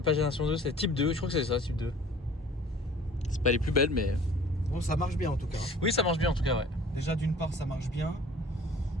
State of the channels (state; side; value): normal; both; correlation 0.49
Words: pas génération 2, c'est type 2. Je crois que c'est ça, type 2. C'est pas les plus belles, mais. Bon, ça marche bien en tout cas. Hein. Oui, ça marche bien en tout cas, ouais. Déjà, d'une part, ça marche bien.